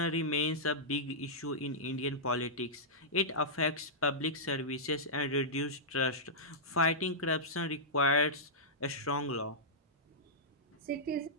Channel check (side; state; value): both; normal; correlation -0.12